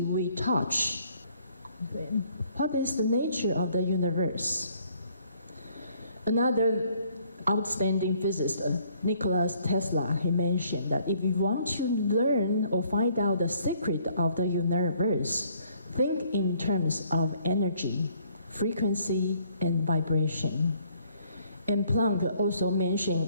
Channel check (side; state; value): both; inverted; correlation -0.64